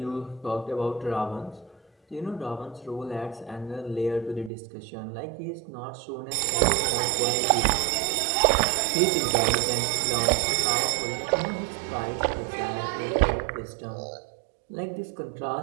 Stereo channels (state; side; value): drops out; left; at 4.5 s